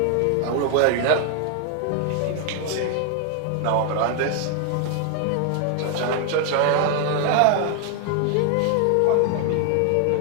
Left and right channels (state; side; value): different; both; correlation 0.00